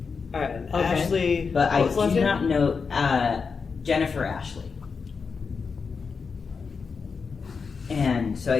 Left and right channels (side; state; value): right; quieter; 5.3 dB